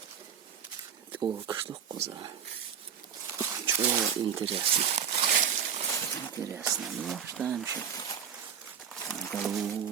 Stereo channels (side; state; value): left; quieter; 7.7 dB